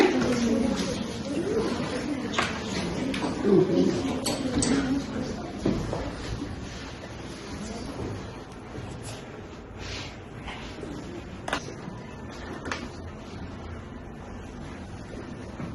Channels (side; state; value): both; identical; correlation 1.00